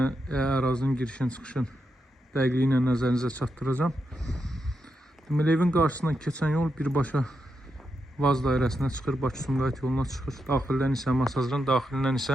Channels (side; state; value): both; normal; correlation 0.85